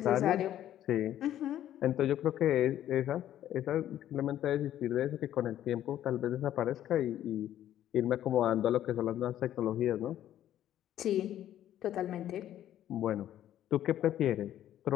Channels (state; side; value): quieter; right; 11.9 dB